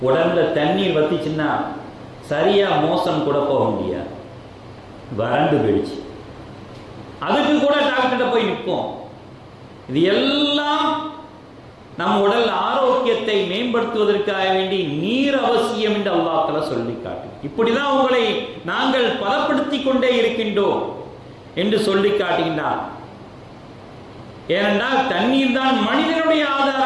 உடம்புல தண்ணீர் வத்திச்சுன்னா சரியா மோசம் கூட போக முடியாது, வறண்டு போயிடுச்சு. அதுக்கு கூட டாக்டர்கிட்ட போய் நிற்போம். இது எல்லாம் நம் உடல் ஆரோக்கியத்தை மேம்படுத்துவதற்காக வேண்டி நீர் அவசியம் என்று அல்லாஹ் தஆலா சொல்லி காட்டு. இப்படிதான் உங்களை நாங்கள் பலப்படுத்தி கொண்டே இருக்கின்றோம் என்று சொல்லி காட்டுகின்றார். ஏனென்றால் தண்ணீர் தான் மனிதனுடைய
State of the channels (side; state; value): both; identical; correlation 1.00